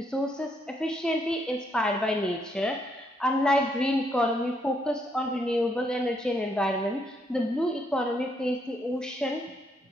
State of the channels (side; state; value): both; normal; correlation 0.74